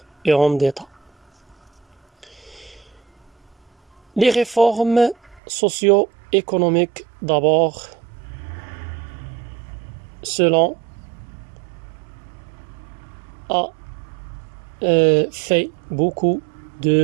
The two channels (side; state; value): left; drops out; at 5.4 s